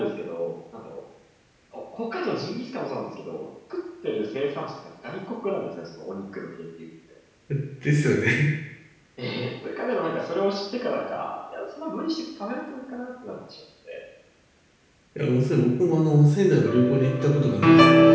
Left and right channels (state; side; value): identical; both; correlation 1.00